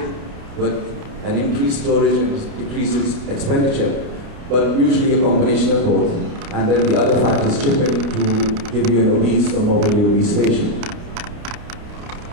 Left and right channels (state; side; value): late; left; 29 ms